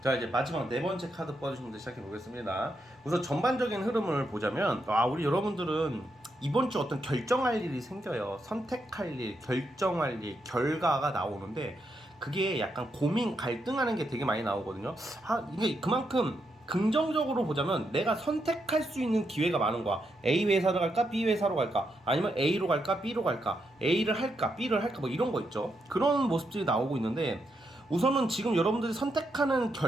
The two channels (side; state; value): both; normal; correlation 0.81